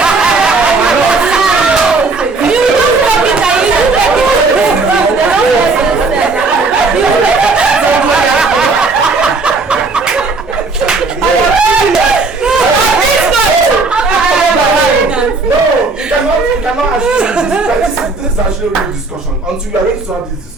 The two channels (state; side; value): quieter; left; 3.9 dB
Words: No, you cannot actually. This is actually a real discussion. Until we are ready to have this